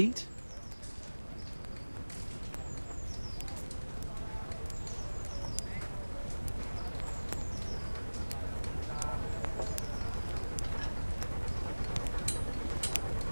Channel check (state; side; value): inverted; both; correlation -1.00